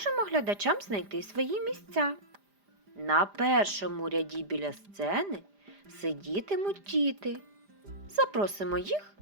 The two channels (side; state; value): left; late; 5.0 ms